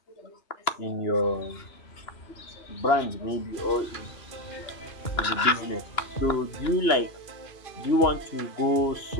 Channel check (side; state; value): right; late; 2.9 ms